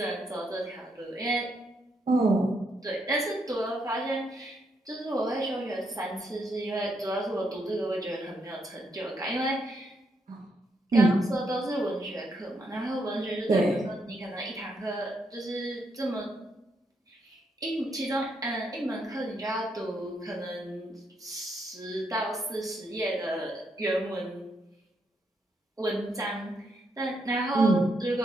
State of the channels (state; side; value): normal; both; correlation 0.78